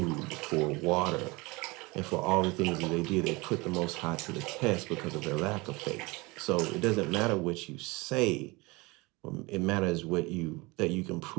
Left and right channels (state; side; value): quieter; left; 24.5 dB